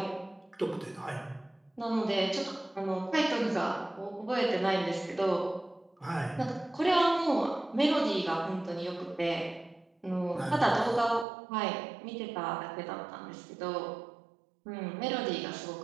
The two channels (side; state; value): left; drops out; at 11.2 s